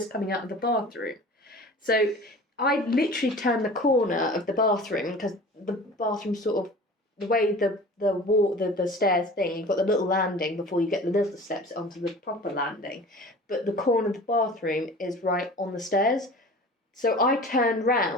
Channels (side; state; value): both; normal; correlation 0.41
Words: coming out of the bathroom. So I literally turned the corner of the bathroom because the bathroom sort of, the way the stairs thing, you've got the little landing before you get the little steps onto the proper landing, but the corner of the bathroom is right on the stairs. So I turned